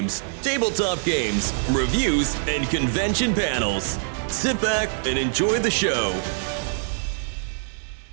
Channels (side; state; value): left; silent; digital silence